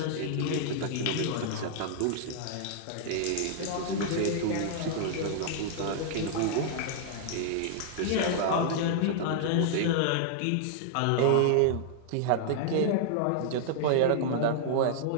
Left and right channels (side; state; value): both; different; correlation -0.01